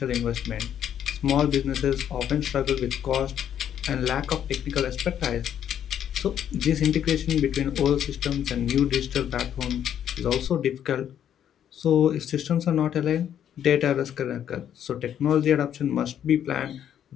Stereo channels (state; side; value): quieter; right; 9.7 dB